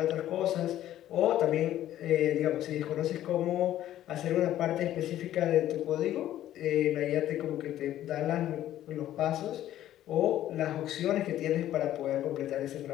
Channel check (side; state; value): right; quieter; 12.8 dB